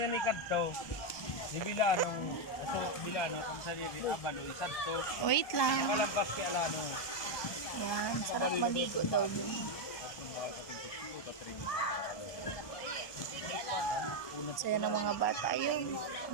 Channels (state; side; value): late; right; 1.2 ms